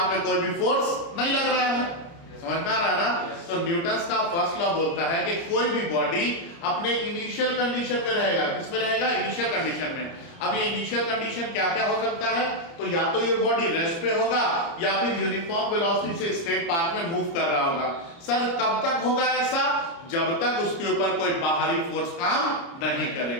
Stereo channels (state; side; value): late; right; 30 ms